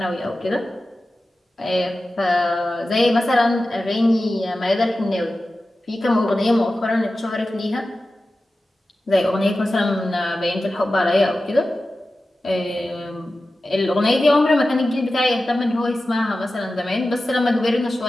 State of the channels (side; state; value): both; normal; correlation 0.94